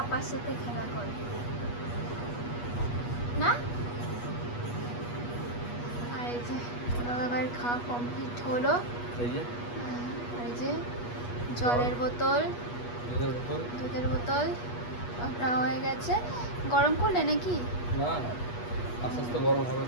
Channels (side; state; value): right; late; 8.3 ms